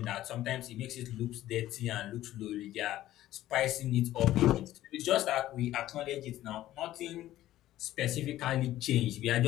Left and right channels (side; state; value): right; quieter; 14.2 dB